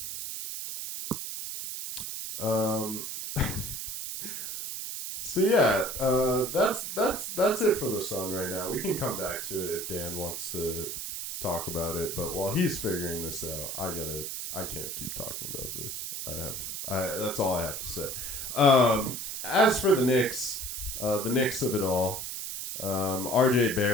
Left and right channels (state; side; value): noise; right; hiss, 5 dB below the sound